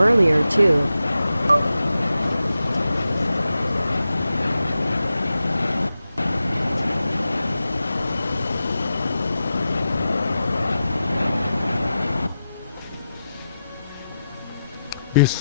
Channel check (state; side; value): inverted; both; correlation -0.90